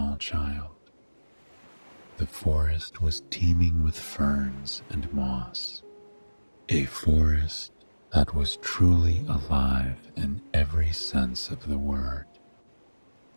child. The forest was teeming with ferns and moss, a forest that was truly alive in every sense of the word.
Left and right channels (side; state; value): both; inverted; correlation -1.00